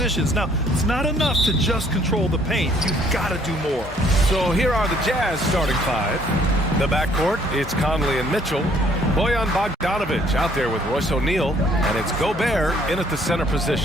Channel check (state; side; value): normal; both; correlation 0.62